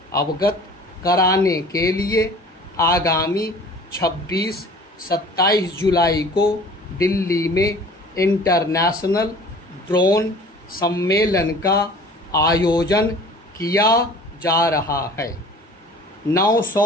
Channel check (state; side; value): normal; both; correlation 0.46